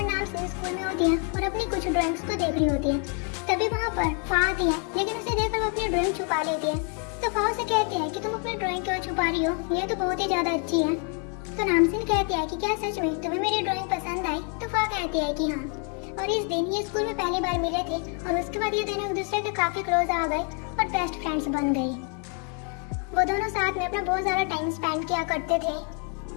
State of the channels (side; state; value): right; quieter; 39.4 dB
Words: नामसीन स्कूल में होती है और अपनी कुछ ड्राइंग्स को देख रही होती है। तभी वहाँ पर फा आती है, लेकिन उसे देखकर वो अपनी ड्राइंग छुपा लेती है। तो फा उसे कहती है कि तुम अपनी ड्राइंग क्यों छुपा रही हो, ये तो बहुत ही ज्यादा अच्छी है। तो नामसीन कहती है कि क्या सच में तुम्हें मेरी ड्राइंग पसंद आई? तो फा कहती है कि हाँ। और इस दिन ये स्कूल में पहली बार मिले थे और उसके बाद ये दोनों एक दूसरे के काफी क्लोज आ गए और बेस्ट फ्रेंड्स बन गई। वो दोनों साथ में अपना बहुत ज्यादा टाइम स्पेंड किया करते थे